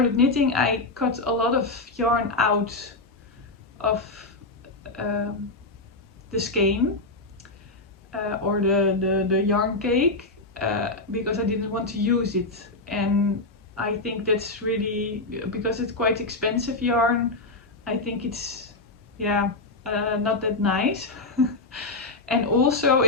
knitting, I cut a lot of yarn out of the skein or the yarn cake because I didn't want to use it. And I think that's really, because it's quite expensive yarn, I think it's, yeah, not that nice. And also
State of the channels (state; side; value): quieter; right; 3.1 dB